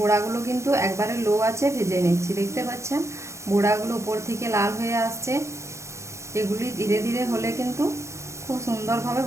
বড়াগুলো কিন্তু একবারে লো আছে ভেজে নিচ্ছি। দেখতে পাচ্ছেন বড়াগুলো উপর থেকে লাল হয়ে আসছে। এগুলি ধীরে ধীরে হলে কিন্তু খুব সুন্দরভাবে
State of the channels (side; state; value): left; late; 0.14 ms